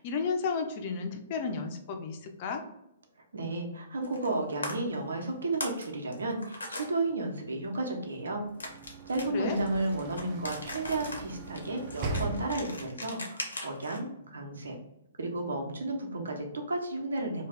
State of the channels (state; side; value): inverted; both; correlation -0.61